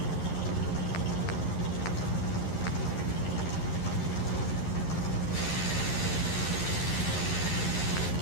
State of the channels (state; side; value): late; right; 11 ms